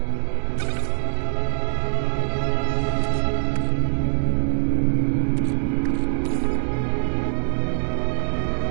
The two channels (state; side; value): silent; left; digital silence